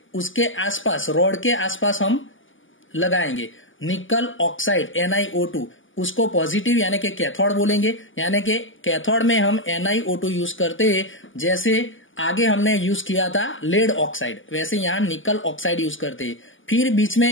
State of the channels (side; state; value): right; late; 0.57 ms